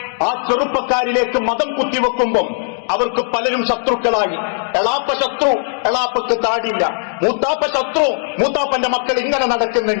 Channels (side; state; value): right; silent; 68 dB below the other